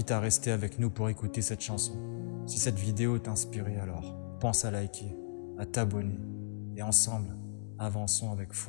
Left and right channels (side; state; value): right; silent; digital silence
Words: à rester avec nous pour écouter cette chanson. Si cette vidéo t'a inspiré, alors pense à liker, à t'abonner. Et ensemble, avançons avec